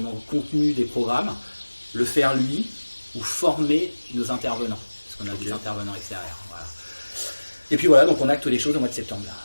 contenu des programmes, le faire lui, ou former nos intervenants, parce qu'on a des intervenants extérieurs. Voilà. Et puis voilà, donc on acte les choses au mois de septembre, là.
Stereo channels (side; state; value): both; inverted; correlation -1.00